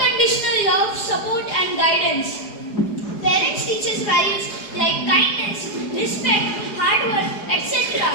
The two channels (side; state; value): right; late; 4.8 ms